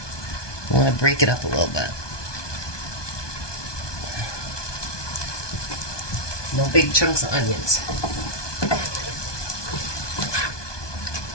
We want to break it up a little bit. No big chunks of onions.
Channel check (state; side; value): late; right; 1.2 ms